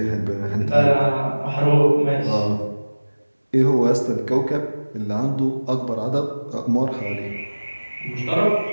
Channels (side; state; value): both; inverted; correlation -1.00